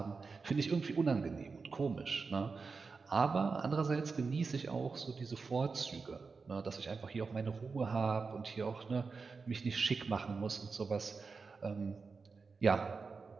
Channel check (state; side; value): quieter; left; 4.7 dB